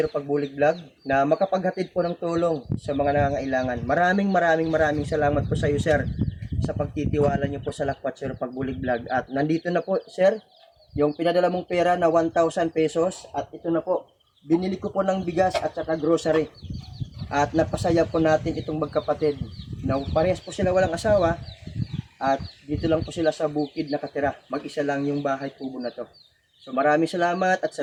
Pagbulig Vlog na makapaghatid po ng tulong sa mga nangangailangan. Maraming salamat po sa iyo sir sa pagtitiwala niyo po sa Lakwat Zero Pagbulig Vlog. At nandito na po sir yung pinadala mong pera na 1,000 pesos at ito na po, binili ko po ng bigas at saka grocery. At napasaya po natin itong magkapatid na parehas po sila walang asawa at dito lang po sila sa bukid nakatira. Mag-isa lang yung bahay kubo na to. So maraming salamat at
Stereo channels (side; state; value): both; identical; correlation 1.00